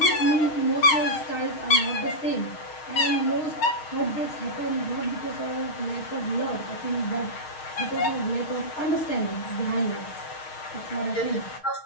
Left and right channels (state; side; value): late; right; 6.5 ms